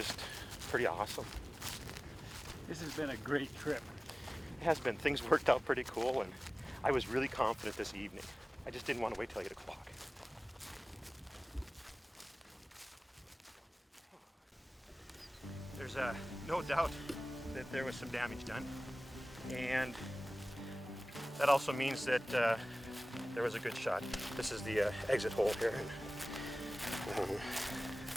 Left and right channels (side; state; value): both; normal; correlation 0.98